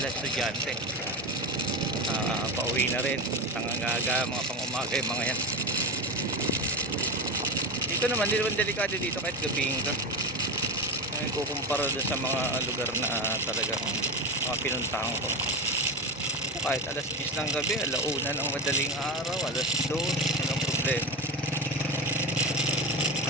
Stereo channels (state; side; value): normal; both; correlation 0.19